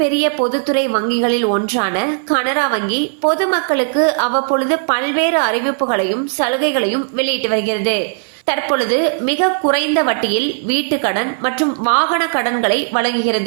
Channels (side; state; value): left; silent; 60 dB below the other